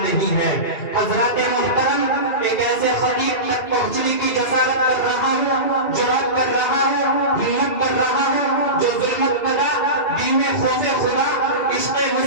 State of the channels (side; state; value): right; late; 2.4 ms